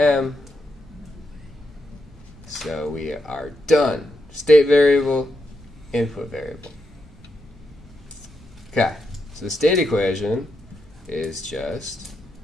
So we are done. State variable, input variable. Okay, so the state equation is just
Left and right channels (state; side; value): normal; both; correlation 0.84